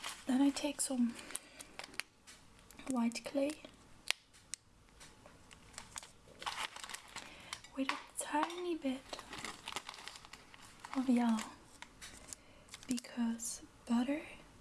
then I take some white clay with a tiny bit of yellow, because butter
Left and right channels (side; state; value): both; identical; correlation 1.00